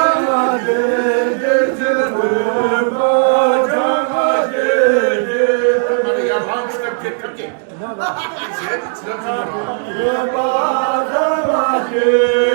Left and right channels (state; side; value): silent; left; digital silence